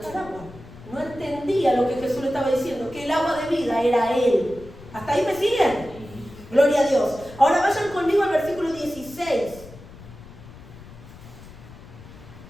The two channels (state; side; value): noise; left; rumble, 18 dB below the sound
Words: agua. No entendía lo que Jesús le estaba diciendo, que el agua de vida era Él. ¿Hasta ahí me siguen? Gloria a Dios. Ahora vayan conmigo al versículo 16.